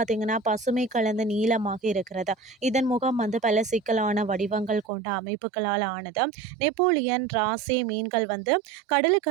பசுமை கலந்த நீளமாக இருக்கிறது. இதன் முகம் பல சிக்கலான வடிவங்கள் கொண்ட அமைப்புகளால் ஆனது. நெப்போலியன், ராசே மீன்கள்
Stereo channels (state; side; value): drops out; left; at 4.9 s